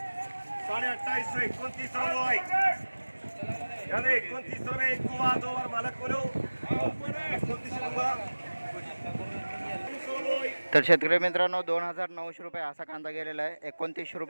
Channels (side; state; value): both; inverted; correlation -1.00